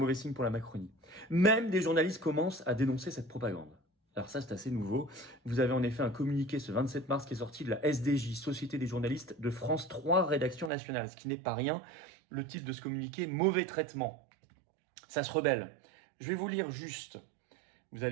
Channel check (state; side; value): drops out; left; at 10.7 s